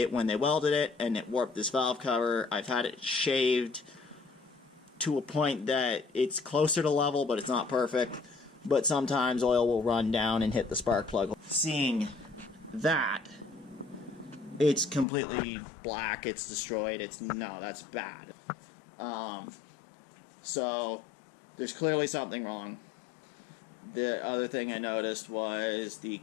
when they welded it, and it warped this valve cover. I've had it shaved to a point that it's closer to level, but it's not perfect. But sometimes oil will run down and hit the spark plug. Seeing that, it's completely black, it's destroyed, no, that's bad. So there's clearly something wrong. The other thing I noticed was the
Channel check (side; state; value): right; drops out; at 15.1 s